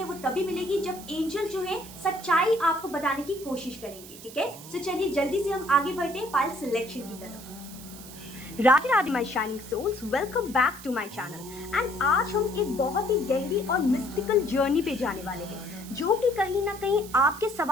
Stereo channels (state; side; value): noise; right; hiss, 16 dB below the sound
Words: वो तभी मिलेगी जब एंजल जो है सच्चाई आपको बताने की कोशिश करेंगे। ठीक है, तो चलिए जल्दी से हम आगे बढ़ते हैं फाइल सिलेक्शन की तरफ। Radhe Radhe my shining souls, welcome back to my channel. And आज हम एक बहुत ही गहरी और मिस्टिकल जर्नी पे जाने वाले हैं जो कि कहीं ना कहीं आपके